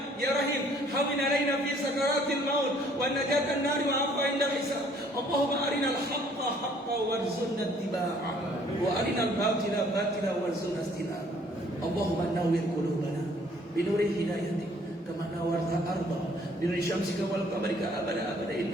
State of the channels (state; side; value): normal; both; correlation 0.60